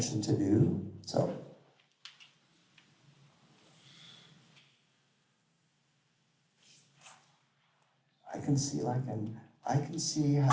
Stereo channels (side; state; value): both; identical; correlation 1.00